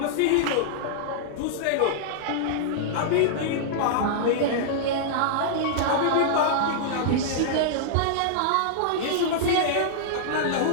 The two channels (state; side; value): different; both; correlation -0.02